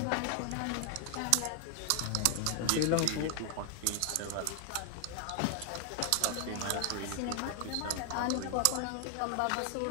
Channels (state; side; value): different; both; correlation 0.00